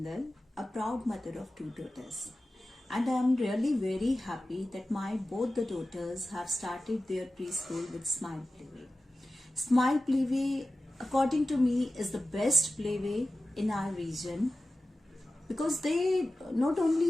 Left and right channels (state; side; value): normal; both; correlation 0.94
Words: a proud mother of two daughters. And I am really very happy that my both the daughters have started their preschool with Smile Playway. Smile Playway, according to me, is the best playway in our region because they not